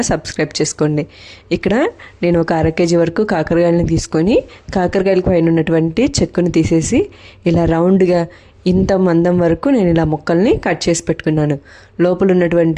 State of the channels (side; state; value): both; identical; correlation 1.00